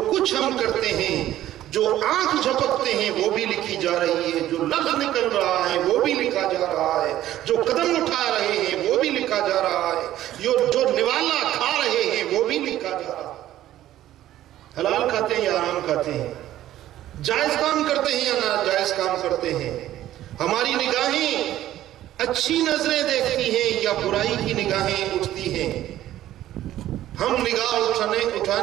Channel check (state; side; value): quieter; left; 13.4 dB